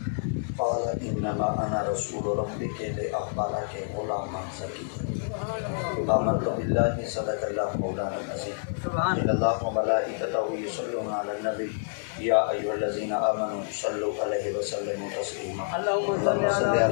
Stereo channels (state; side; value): silent; right; digital silence